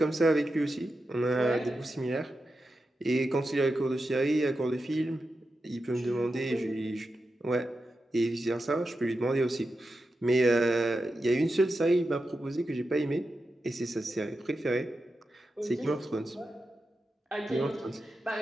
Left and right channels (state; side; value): normal; both; correlation 0.90